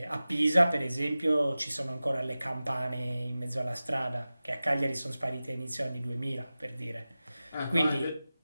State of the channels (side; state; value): both; inverted; correlation -0.96